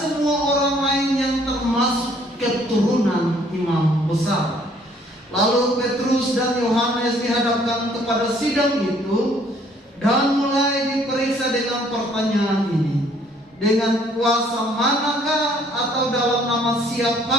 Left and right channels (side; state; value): both; normal; correlation 0.62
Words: orang lain yang termasuk keturunan imam besar. Lalu Petrus dan Yohanes dihadapkan kepada sidang itu dan mulai diperiksa dengan pertanyaan ini. Dengan kuasa manakah atau dalam nama